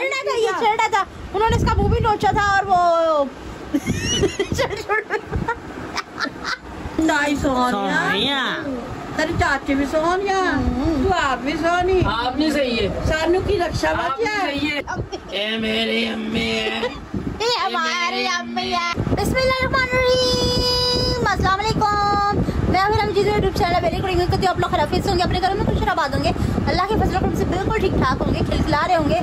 था, ये छेड़ा था उन्होंने, इसका मुंह भी नोचा था और वो नहीं सोनिया, तेरे चाचे भी सोनिया, तू आप भी सोनी, आप नहीं सही है, सानू की रक्षा आप नहीं सही है। ए मेरी अम्मी है, ये हमारी अम्मी है। बिस्मिल्लाहिर्रहमानिर्रहीम, अस्सलाम वालेकुम। मैं फिर हम जिस यूट्यूब चैनल बेली करेंगे कि आप लोग खराफिज होंगे, अपने घरों में खुश आबाद होंगे, अल्लाह के फजल करम से बिल्कुल ठीक ठाक होंगे, खिलखिला रहे होंगे,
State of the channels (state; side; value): identical; both; correlation 1.00